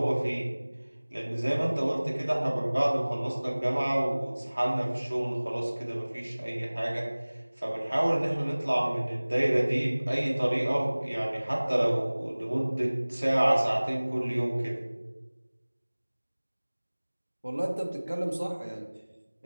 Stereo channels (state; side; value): inverted; both; correlation -1.00